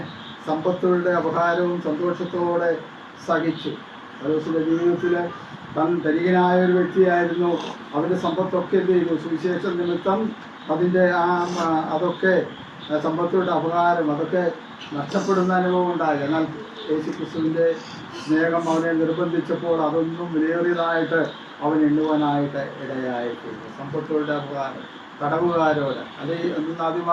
സമ്പത്തുകളുടെ അപഹാരവും സന്തോഷത്തോടെ സഹിച്ചു. പൗലോസിൻ്റെ ജീവിതത്തിൽ താൻ ധനികനായ ഒരു വ്യക്തിയായിരുന്നു. അവൻ്റെ സമ്പത്തൊക്കെ എന്ത് ചെയ്തു? സുവിശേഷ നിമിത്തം അതിൻ്റെ അതൊക്കെ സമ്പത്തുകളുടെ അപകാരം അതൊക്കെ നഷ്ടപ്പെടുന്ന അനുഭവം ഉണ്ടായി. എന്നാൽ യേശുക്രിസ്തുവിൻ്റെ സ്നേഹം അവനെ നിർബന്ധിച്ചപ്പോൾ അതൊന്നും വിലയേറിയതായിട്ട് അവൻ എണ്ണുവാനായിട്ട് ഇടയായിട്ടുണ്ട്. സമ്പത്തുകളുടെ അപകാരം, തടവുകാരോട്, അല്ലെങ്കിൽ അന്ന് ആദ്യം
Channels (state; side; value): identical; both; correlation 1.00